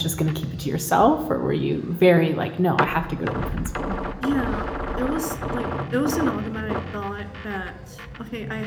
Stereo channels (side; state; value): both; identical; correlation 1.00